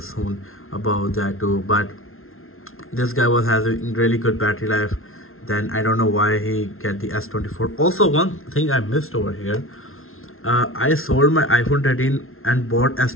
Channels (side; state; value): right; late; 0.61 ms